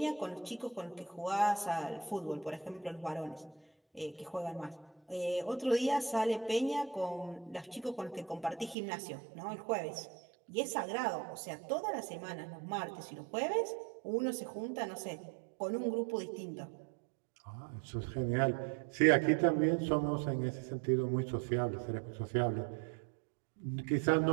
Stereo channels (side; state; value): left; drops out; at 8.8 s